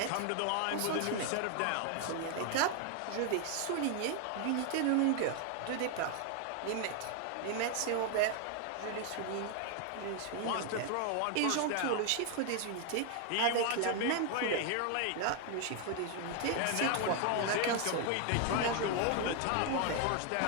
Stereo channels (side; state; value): both; different; correlation 0.00